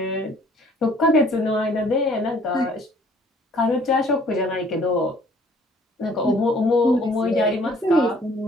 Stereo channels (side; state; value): both; normal; correlation 0.57